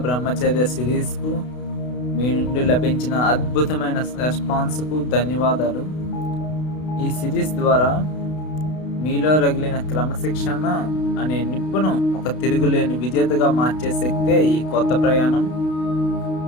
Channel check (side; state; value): right; late; 32 ms